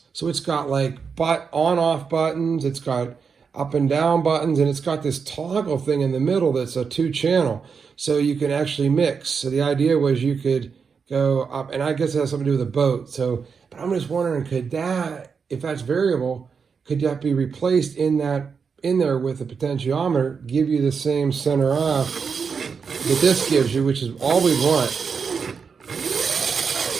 So it's got like on-off buttons. It's got up and down buttons, and it's got this toggle thing in the middle that's a 2-channel, so you can actually mix. So the idea was you could go up, and I guess it has something to do with the boat. So, but I'm just wondering, could that, if that's variable, could that be replaced in there with a potentiometer, give you the same center off that this gives you, which is all we want.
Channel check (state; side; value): quieter; left; 5.8 dB